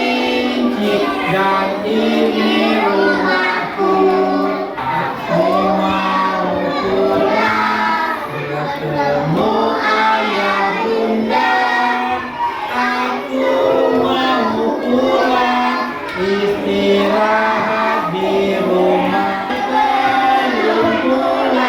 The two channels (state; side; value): identical; both; correlation 1.00